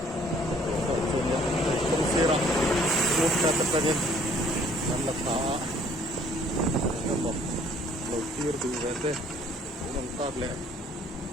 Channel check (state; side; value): normal; both; correlation 0.58